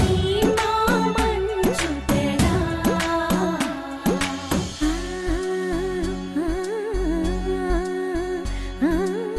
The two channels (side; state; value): both; identical; correlation 1.00